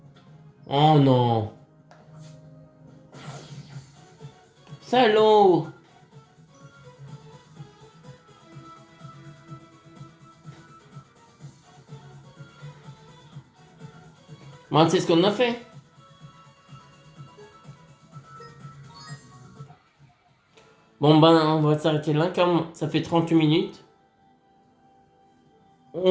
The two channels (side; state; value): both; identical; correlation 1.00